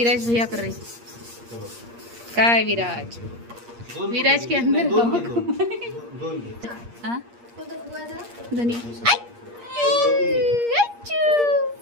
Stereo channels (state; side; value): late; left; 8.5 ms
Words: भैया कर रही. काय विराज, विराज के अंदर धनी